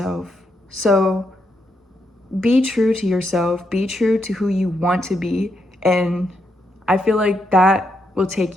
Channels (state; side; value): normal; both; correlation 0.80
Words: So be true to yourself, be true to who you want to be, and I feel like that will take